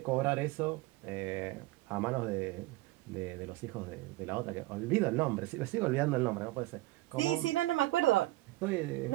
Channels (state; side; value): quieter; left; 18.7 dB